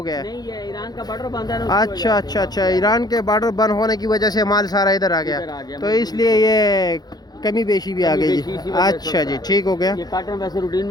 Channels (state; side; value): late; right; 0.19 ms